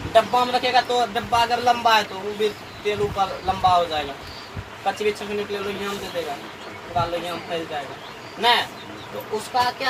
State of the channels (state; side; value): identical; both; correlation 1.00